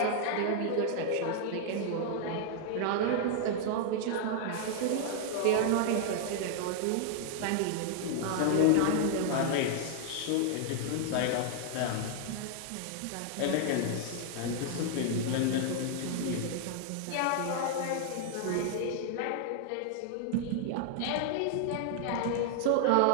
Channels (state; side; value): different; both; correlation 0.00